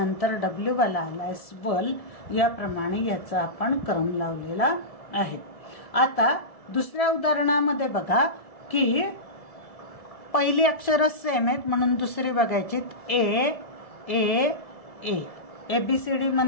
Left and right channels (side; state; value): right; late; 1.7 ms